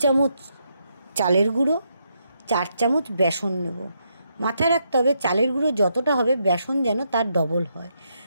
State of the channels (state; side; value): inverted; both; correlation -0.78